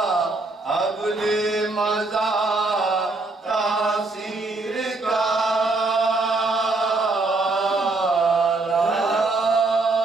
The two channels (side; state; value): left; quieter; 3.4 dB